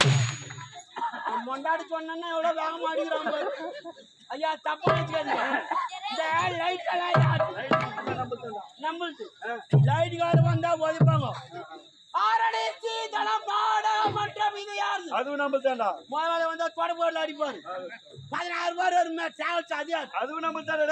மொண்டாடி சொன்னா எவ்வளவு வேகமா அடிக்கிறாங்க. ஐயா தப்பா வச்சுக்காதீங்க. இந்த லைட் நம்மளுக்கு லைட்டுக்கார வந்தா ஒதுப்பாங்க. ஆரடிச்சு தளம் பாட மற்றும் இது யாரு? அதுவும் நம்மளுதான்டா. முதல்ல வந்தா தொடர்போர்ல அடிப்பாரு. 16 பேர் ஒரு டிராவல்ஸ் அதிகார். அதுவும் நம்மளுதானே.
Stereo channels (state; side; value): identical; both; correlation 1.00